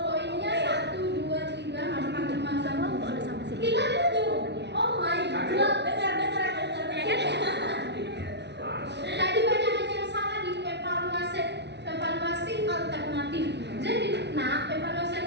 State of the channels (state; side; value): late; left; 0.50 ms